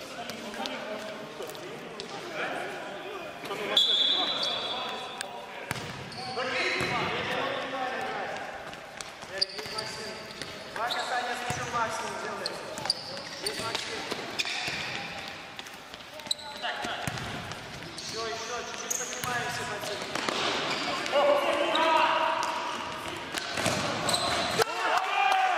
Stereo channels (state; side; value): identical; both; correlation 1.00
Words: Два касания с мячом максимум делаем. Есть Максим. Еще, чуть-чуть поднимаемся, Максим.